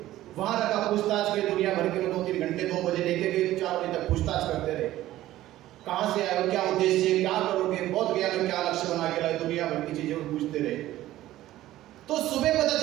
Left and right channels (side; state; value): left; quieter; 14.8 dB